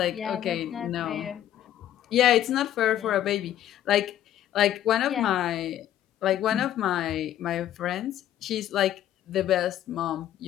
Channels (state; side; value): quieter; right; 11.8 dB